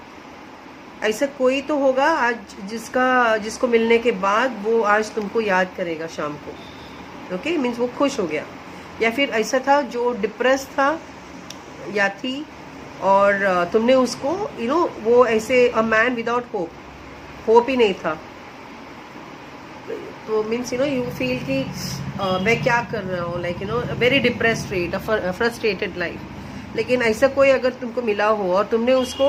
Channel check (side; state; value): both; identical; correlation 1.00